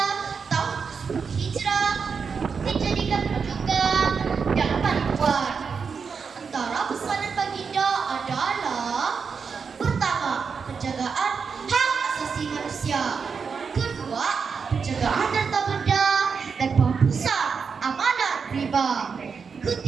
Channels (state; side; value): quieter; left; 5.7 dB